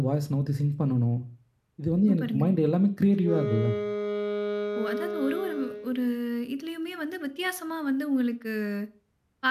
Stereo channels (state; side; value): identical; both; correlation 1.00